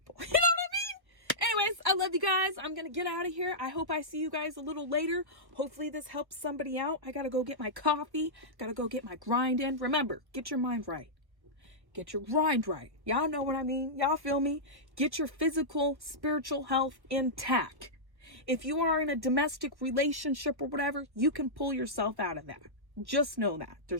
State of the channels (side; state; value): left; late; 1.1 ms